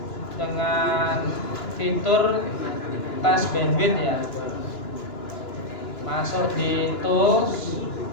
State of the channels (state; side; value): late; right; 2.9 ms